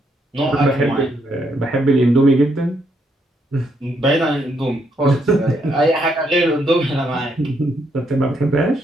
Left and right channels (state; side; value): normal; both; correlation 0.75